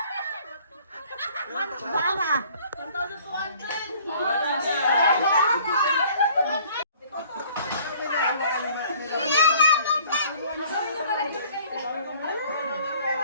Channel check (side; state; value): both; inverted; correlation -0.54